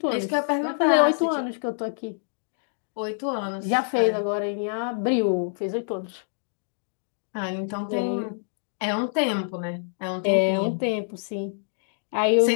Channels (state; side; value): silent; right; digital silence